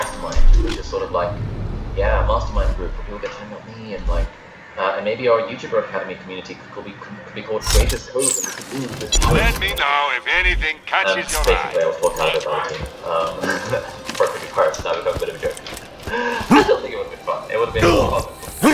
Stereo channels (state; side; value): identical; both; correlation 1.00